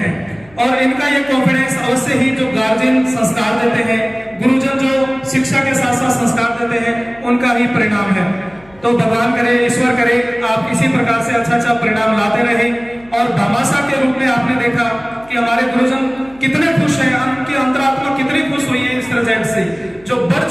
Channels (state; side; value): noise; left; hum, 27 dB below the sound